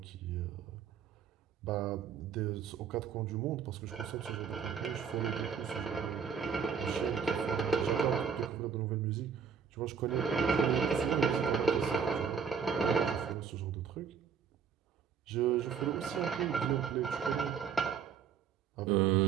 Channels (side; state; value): left; quieter; 6.9 dB